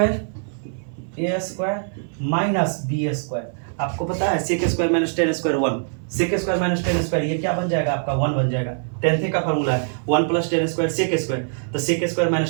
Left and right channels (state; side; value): silent; left; 59 dB below the other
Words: square minus b square. आपको पता है sec square minus 10 square 1, sec square minus 10 square, ये क्या बन जाएगा आपका 1 बन जाएगा। 10th का फॉर्मूला है 1 प्लस 10 स्क्वायर सेक स्क्वायर, तो सेक स्क्वायर